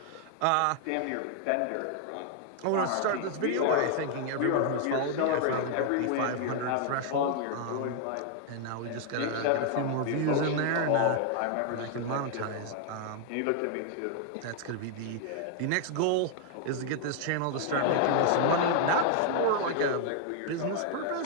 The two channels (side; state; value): both; different; correlation 0.00